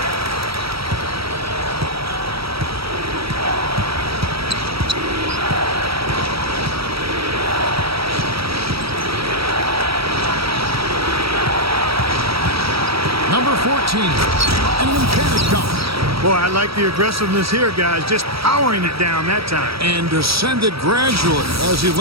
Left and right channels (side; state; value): left; late; 0.76 ms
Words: Number 14, and an emphatic dunk. Boy, I like the aggressiveness here, guys. Just powering it down that time. And descended gradually as he